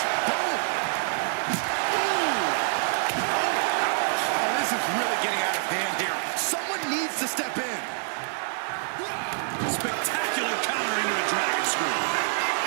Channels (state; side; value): silent; left; digital silence